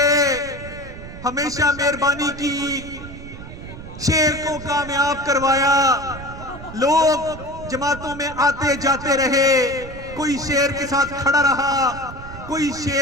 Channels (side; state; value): right; noise; rumble, 13 dB below the sound